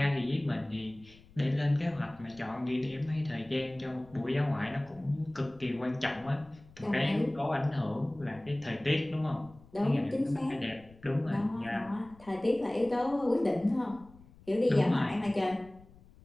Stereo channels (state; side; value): noise; left; rumble, 24 dB below the sound